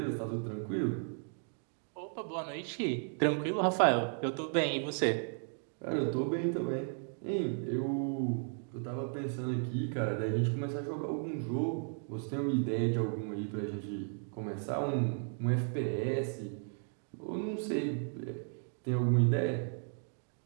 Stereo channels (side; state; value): left; silent; 55 dB below the other